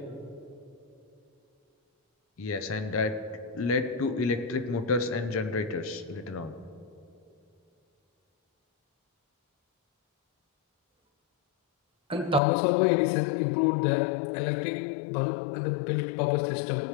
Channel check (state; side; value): drops out; right; at 12.4 s